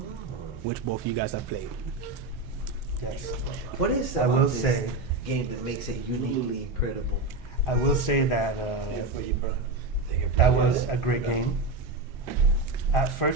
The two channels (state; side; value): quieter; left; 3.3 dB